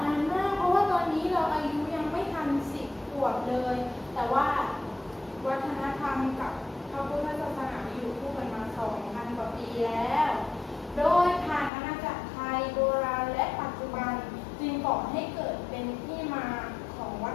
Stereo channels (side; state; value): right; drops out; at 11.7 s